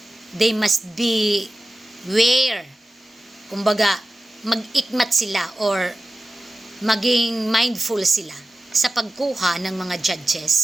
they must be aware, kumbaga mag-ikmat sila or maging mindful sila sa pagkuha ng mga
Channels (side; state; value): both; normal; correlation 0.94